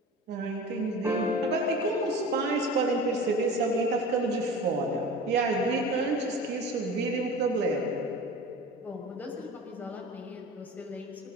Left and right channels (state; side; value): normal; both; correlation 0.36